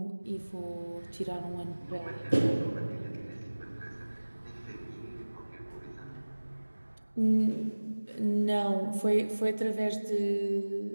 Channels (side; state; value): both; inverted; correlation -1.00